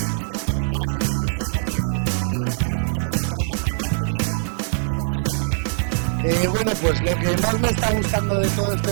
desvirtualizar a gente que nos seguimos en redes sociales en 2.0 relacionado con el turismo y con social media. Bueno, pues lo que más me está gustando de todo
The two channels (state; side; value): silent; left; 64 dB below the other